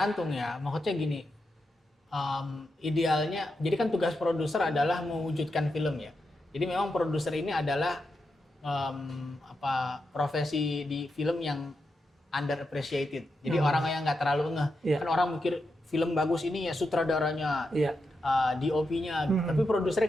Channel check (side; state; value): both; normal; correlation 0.86